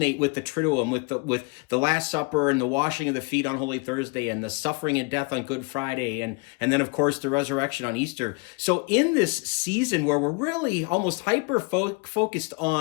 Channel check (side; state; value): right; quieter; 30.3 dB